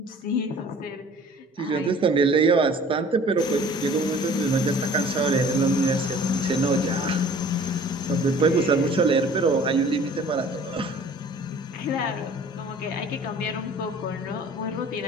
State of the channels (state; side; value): normal; both; correlation 0.49